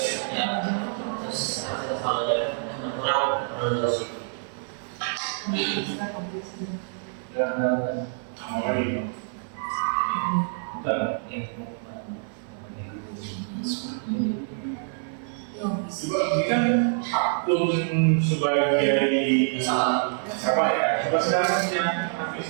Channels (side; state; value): left; silent; 61 dB below the other